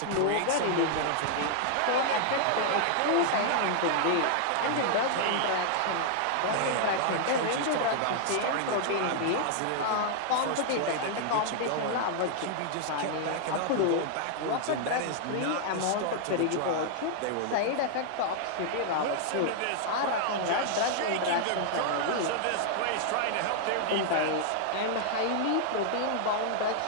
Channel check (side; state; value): both; different; correlation -0.01